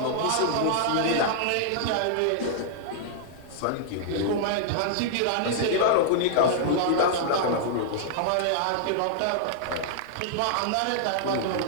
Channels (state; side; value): different; both; correlation -0.01